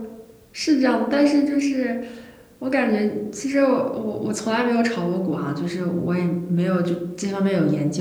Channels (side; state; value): both; identical; correlation 1.00